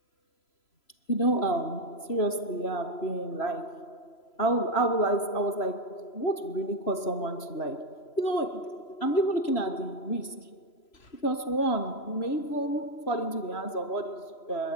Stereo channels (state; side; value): late; right; 3.0 ms